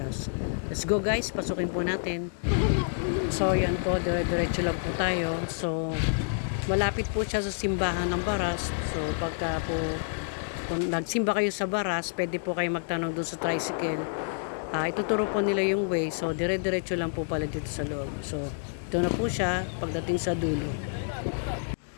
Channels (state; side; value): silent; right; digital silence